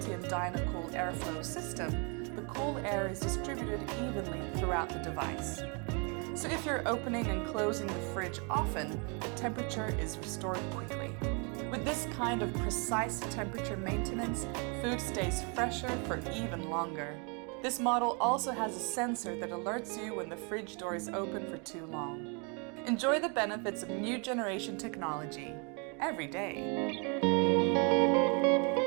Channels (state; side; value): quieter; left; 34.9 dB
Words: and Dynacool airflow system, the cool air is distributed evenly throughout the device. So if you're opening and closing the fridge often, the temperature is restored quickly. With this kind of precise temperature maintenance, food stays fresher for even longer. This model also has a sensor that alerts you when the fridge door is open for too long. Enjoy the benefits of new generation technology every day.